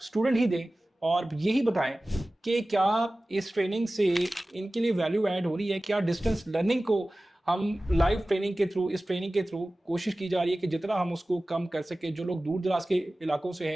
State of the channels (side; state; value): both; normal; correlation 0.97